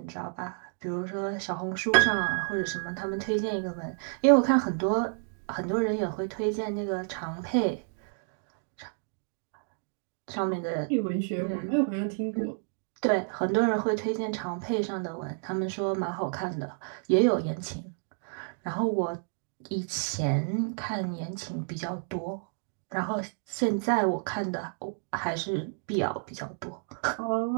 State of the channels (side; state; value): left; silent; 58 dB below the other